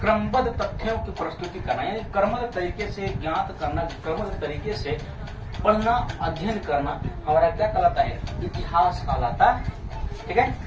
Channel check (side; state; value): both; identical; correlation 1.00